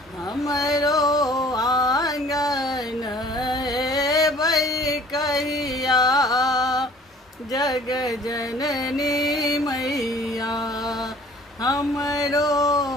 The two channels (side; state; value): both; normal; correlation 0.52